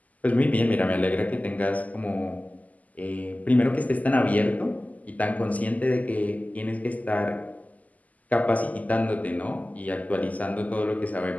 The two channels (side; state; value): right; late; 0.076 ms